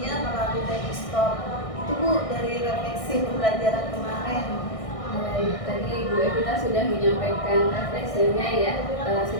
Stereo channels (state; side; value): late; right; 1.6 ms